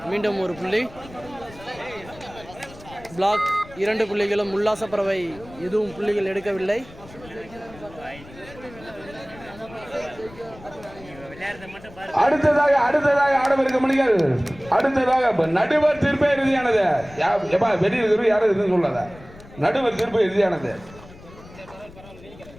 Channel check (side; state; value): left; noise; rumble, 20 dB below the sound